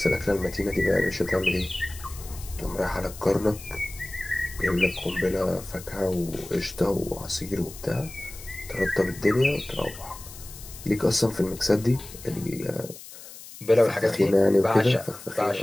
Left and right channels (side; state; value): left; noise; hiss, 16 dB below the sound